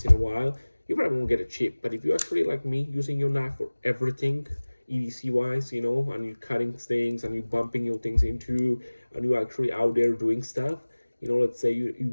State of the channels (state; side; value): inverted; both; correlation -1.00